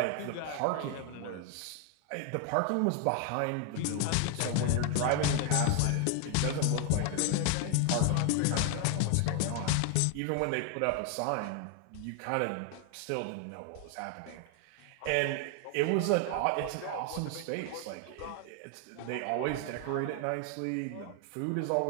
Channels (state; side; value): different; both; correlation 0.01